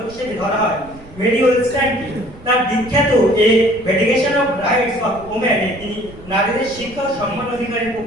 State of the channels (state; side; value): noise; right; rumble, 20 dB below the sound